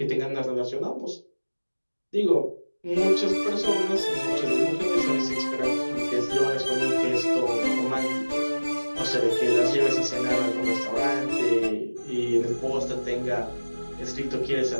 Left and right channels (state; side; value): inverted; both; correlation -1.00